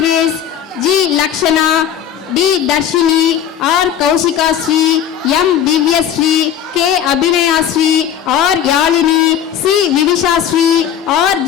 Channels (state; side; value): quieter; right; 9.4 dB